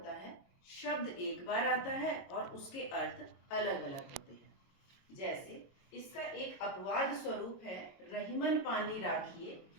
है, शब्द एक बार आता है और उसके अर्थ अलग अलग होते हैं। जैसे इसका एक अपवाद स्वरूप है रहीमन पानी राखिए,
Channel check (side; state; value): right; late; 22 ms